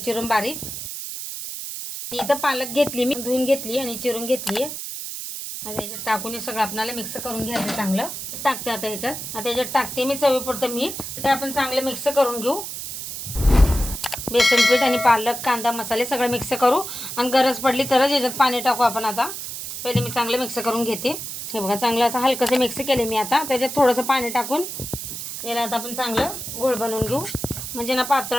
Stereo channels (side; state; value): right; noise; hiss, 7 dB below the sound